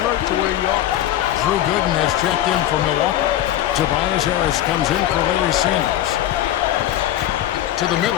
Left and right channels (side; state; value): right; quieter; 12.6 dB